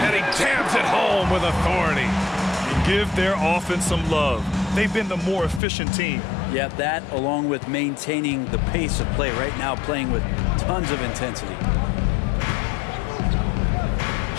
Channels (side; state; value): right; drops out; at 5.6 s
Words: he jams it home with authority. Give their offense some love. They've been the more efficient team. Yeah, that along with maintaining the pace of play right now, playing with tons of intensity.